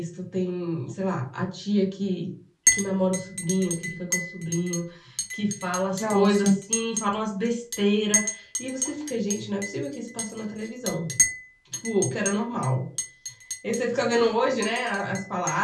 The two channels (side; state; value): both; identical; correlation 1.00